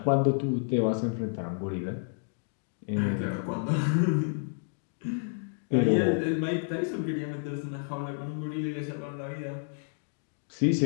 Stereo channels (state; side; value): silent; right; digital silence